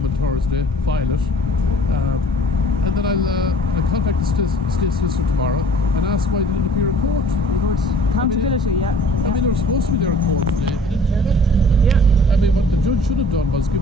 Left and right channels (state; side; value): normal; both; correlation 0.50